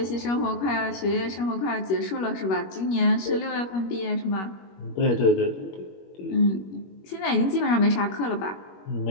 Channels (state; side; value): late; right; 21 ms